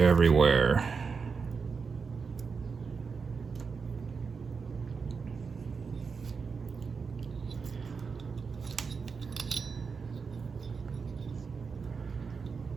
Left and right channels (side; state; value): left; quieter; 5.3 dB